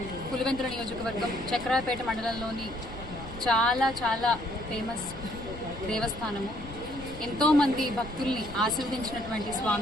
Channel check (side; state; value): left; noise; rumble, 14 dB below the sound